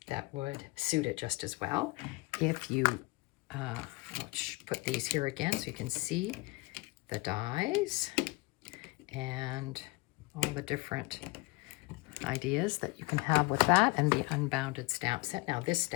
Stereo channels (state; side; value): quieter; right; 24.6 dB